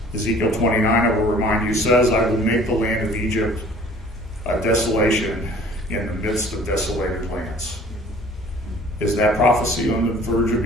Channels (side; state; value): both; normal; correlation 0.51